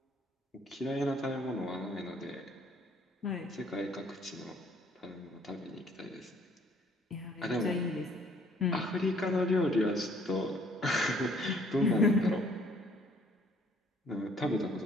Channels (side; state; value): both; normal; correlation 0.61